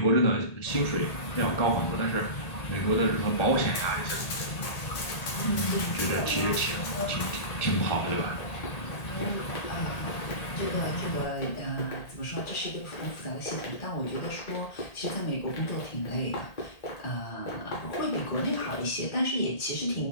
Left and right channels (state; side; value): late; right; 1.8 ms